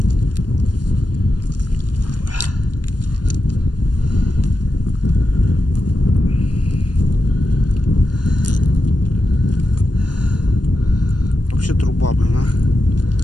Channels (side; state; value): right; late; 0.70 ms